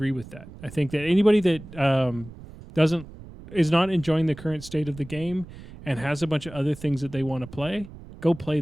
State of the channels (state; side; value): noise; right; rumble, 16 dB below the sound